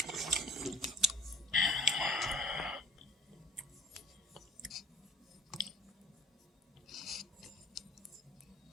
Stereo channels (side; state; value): both; normal; correlation 0.44